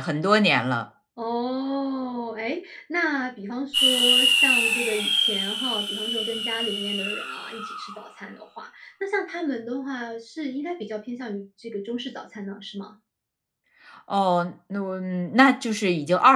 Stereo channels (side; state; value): both; identical; correlation 1.00